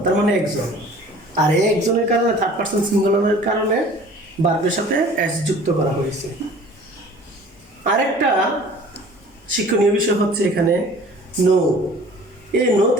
তার মানে একজন। আর এই একজনের কারণে থার্ড পারসন সিঙ্গুলারের কারণে ভার্বের সাথে এস যুক্ত করা হয়েছে। আরেকটা শিক্ষণীয় বিষয় হচ্ছে এখানে নো। এই নো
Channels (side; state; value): both; normal; correlation 0.47